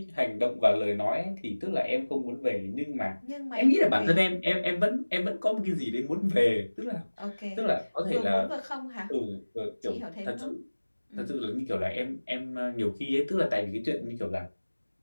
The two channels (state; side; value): inverted; both; correlation -1.00